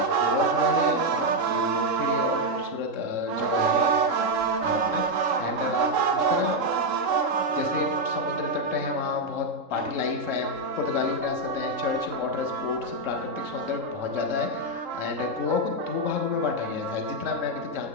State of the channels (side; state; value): left; late; 3.7 ms